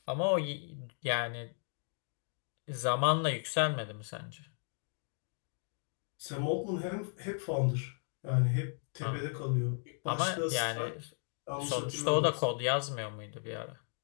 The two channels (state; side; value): silent; right; 54 dB below the other